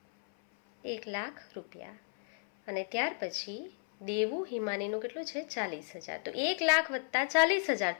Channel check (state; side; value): silent; right; 55 dB below the other